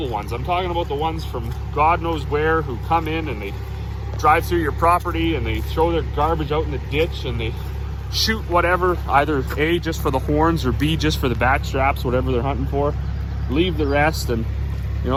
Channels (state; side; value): identical; both; correlation 1.00